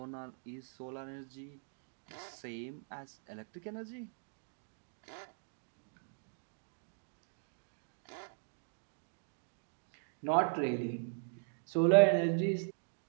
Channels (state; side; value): silent; left; digital silence